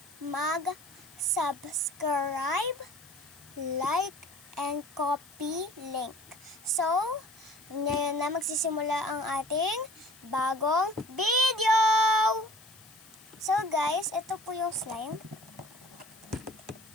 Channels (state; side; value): noise; left; hiss, 23 dB below the sound